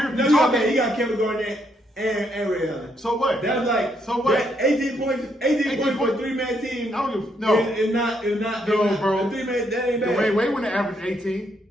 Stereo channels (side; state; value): both; normal; correlation 0.74